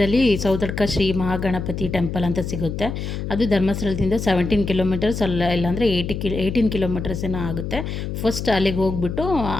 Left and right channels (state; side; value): noise; left; hum, 5 dB below the sound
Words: ಸೌತಡ್ಕ ಶ್ರೀ ಮಹಾಗಣಪತಿ ಟೆಂಪಲ್ ಅಂತ ಸಿಗುತ್ತೆ. ಅದು ಧರ್ಮಸ್ಥಳದಿಂದ 17 ಕಿಲೋಮೀಟರ್ಸ್ ಇಲ್ಲಾಂದರೆ 18 ಕಿಲೋಮೀಟರ್ಸ್ ಏನೋ ಆಗುತ್ತೆ. ಫಸ್ಟ್ ಅಲ್ಲಿಗೆ ಹೋಗ್ಬಿಟ್ಟು